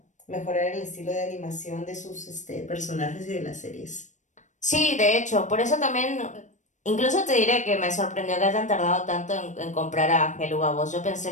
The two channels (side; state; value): right; late; 0.35 ms